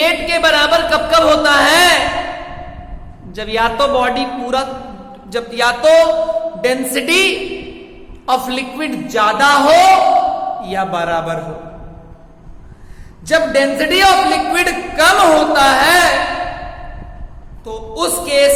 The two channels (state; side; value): identical; both; correlation 1.00